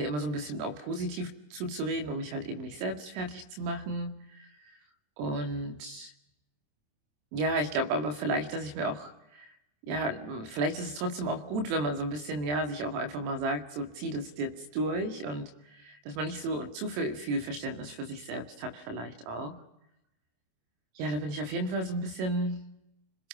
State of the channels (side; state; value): left; late; 27 ms